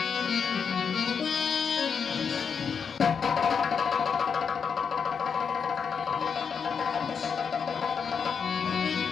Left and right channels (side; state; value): right; quieter; 6.4 dB